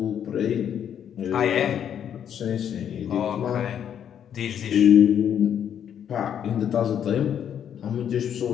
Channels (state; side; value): quieter; right; 9.1 dB